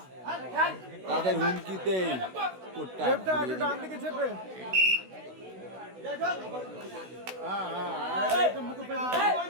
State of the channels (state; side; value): late; left; 16 ms